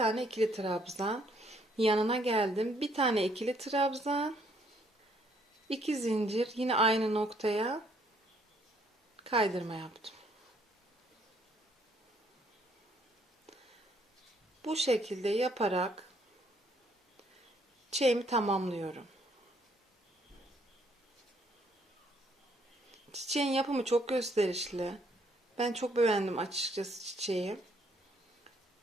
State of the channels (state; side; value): normal; both; correlation 0.67